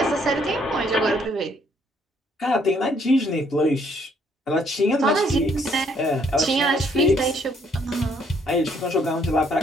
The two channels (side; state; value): both; normal; correlation 0.67